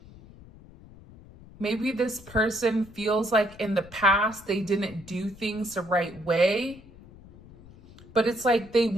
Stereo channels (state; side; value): noise; left; rumble, 21 dB below the sound